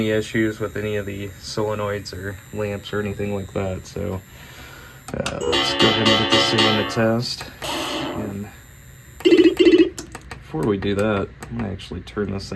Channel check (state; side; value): identical; both; correlation 1.00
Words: issues with any of the solenoids or lamps or anything like that. So let's go ahead and get this thing in the test. And before we do that, I'm going to actually turn this